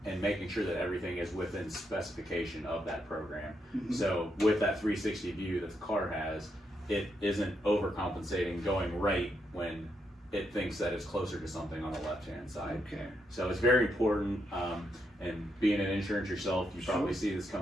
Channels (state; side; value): normal; both; correlation 0.80